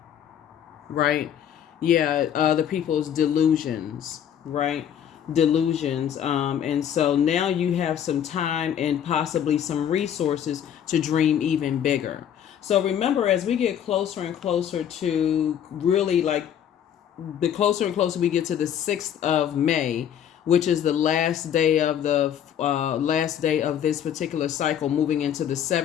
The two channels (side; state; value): right; quieter; 9.4 dB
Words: right? Yeah, other people's delusions, right? Delusions. And so now you have some time and possibly some resources to dream even bigger. So remember, as we get closer and closer to really, like, the closer and closer we get to the 6th of May, which is the last day of this particular cycle, moving into the